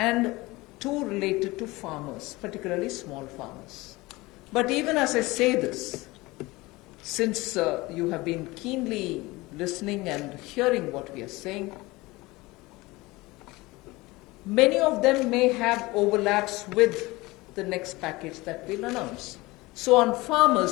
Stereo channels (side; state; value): right; quieter; 21.5 dB